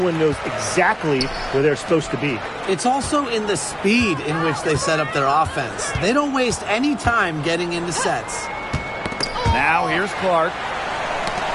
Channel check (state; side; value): identical; both; correlation 1.00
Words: knows exactly where they're supposed to be. It's also in the speed in which they set up their offense. They don't waste any time getting into sets. Now here's Clark.